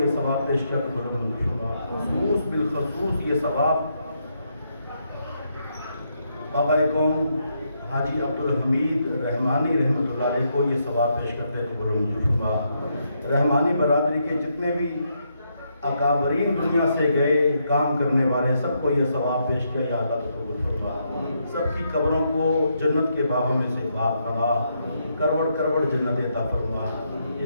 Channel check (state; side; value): inverted; both; correlation -0.78